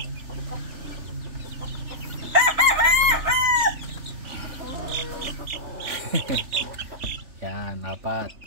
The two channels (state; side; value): late; left; 3.4 ms